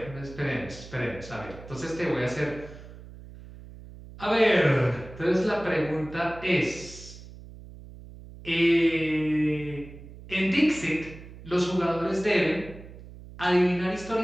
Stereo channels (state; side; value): noise; right; hum, 16 dB below the sound